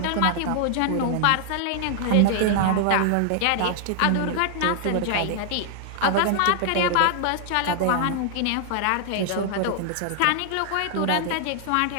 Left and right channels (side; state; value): both; different; correlation 0.00